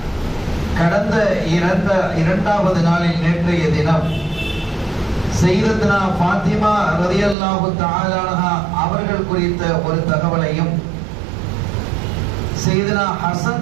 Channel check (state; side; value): drops out; left; at 7.4 s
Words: கடந்த 2வது நாளில் நேற்றைய தினம் சையதனா ஃபாத்திமா ரலியல்லாஹு தஆலா அன்ஹா அவர்கள் குறித்த ஒரு தகவலையும், சையதனா